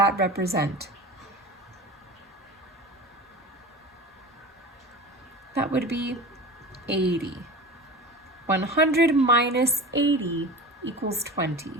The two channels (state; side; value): normal; both; correlation 0.34